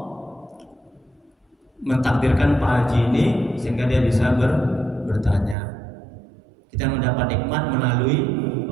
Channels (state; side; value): drops out; left; at 5.6 s